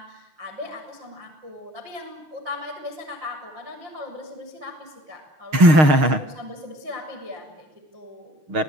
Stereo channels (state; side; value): late; left; 6.4 ms